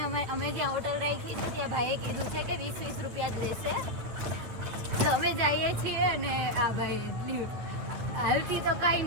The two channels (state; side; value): late; left; 9.3 ms